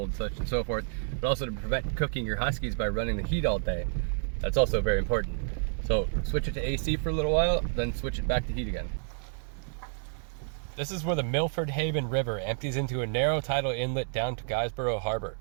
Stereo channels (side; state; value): left; silent; digital silence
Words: such and so forth, but also to prevent cooking your huskies by running the heat all day. That's also very important. So switch it to AC for a little while, then switch it back to heat again. This is where the Milford Haven River empties into a narrow tidal inlet down to Guysborough Harbor.